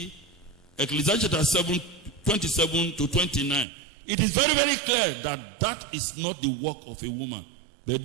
Ecclesiastes chapter 7, 27 to 29, it is very, very clear that that is not the work of a woman. But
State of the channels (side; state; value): left; drops out; at 3.7 s